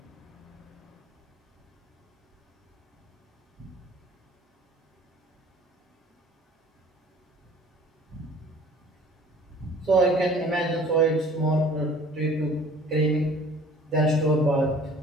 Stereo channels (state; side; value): normal; both; correlation 0.50